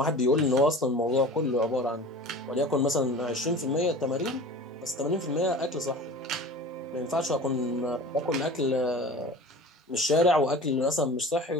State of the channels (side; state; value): both; normal; correlation 0.38